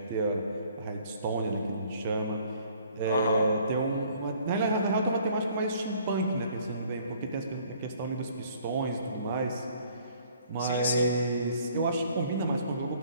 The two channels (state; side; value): inverted; both; correlation -0.58